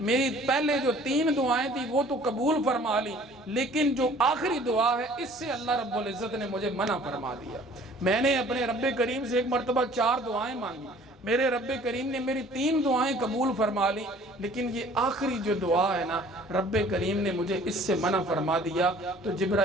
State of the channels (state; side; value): normal; both; correlation 0.52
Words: میری پہلے جو 3 دعائیں تھی وہ تو قبول فرما لی، لیکن جو آخری دعا ہے اس سے اللہ رب العزت نے مجھے منع فرما دیا۔ میں نے اپنے رب کریم سے ایک مرتبہ 4 دعائیں مانگی، میرے رب کریم نے میری 3 دعائیں قبول فرما لی، لیکن یہ آخری جو دعا ہے نا رب کریم نے مجھے اس سے منع فرما دیا۔ تو